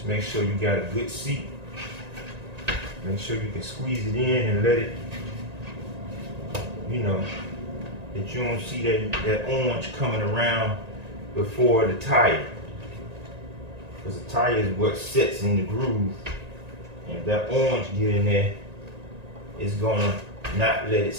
make sure you got a good seat. Make sure you can squeeze it in and let it, you know, that you don't see that orange coming around before the tire. Because the tire is what sets in the groove. And if that orange get in there, it's gonna not let it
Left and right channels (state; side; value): late; left; 1.9 ms